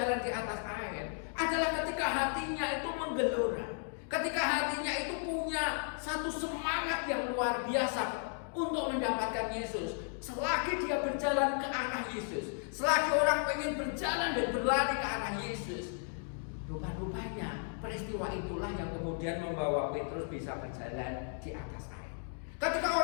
di atas air? Adalah ketika hatinya itu menggelora. Ketika hatinya itu punya satu semangat yang luar biasa untuk mendapatkan Yesus. Selagi dia berjalan ke arah Yesus, selagi orang pengen berjalan dan berlari ke arah Yesus, rupa-rupanya peristiwa itulah yang kemudian membawa Petrus bisa berjalan di atas air. Ketika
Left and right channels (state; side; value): silent; right; 55 dB below the other